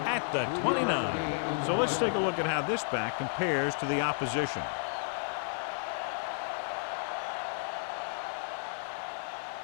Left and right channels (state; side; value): silent; right; digital silence